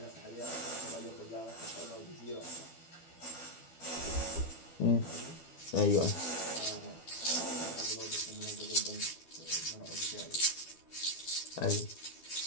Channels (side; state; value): right; late; 12 ms